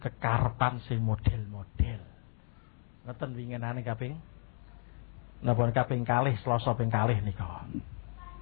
kekarepan sing model-model. Ngoten winginane kaping napa kaping kalih Selasa ping kalih nika.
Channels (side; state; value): right; silent; 56 dB below the other